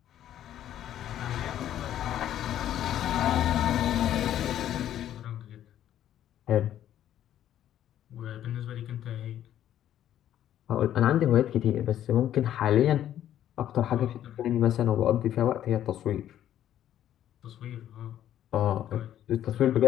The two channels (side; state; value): right; quieter; 11.4 dB